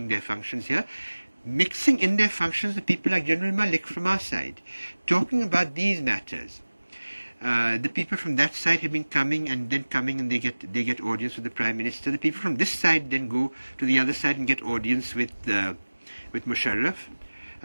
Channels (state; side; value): inverted; both; correlation -1.00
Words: their functions here, mixing in their functions the people like General Malik from our side, talking about these matters. The people from that side have been coming and they get audience with the Prime Minister. The people from this side then go to the other side and get audience with Musharraf.